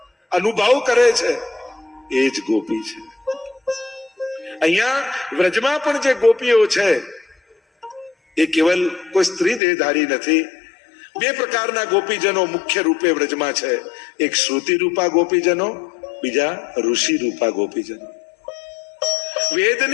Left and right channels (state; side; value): drops out; right; at 9.6 s